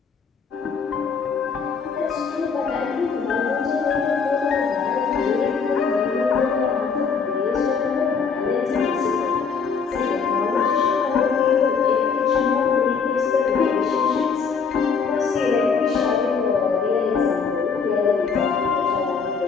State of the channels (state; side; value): quieter; right; 5.7 dB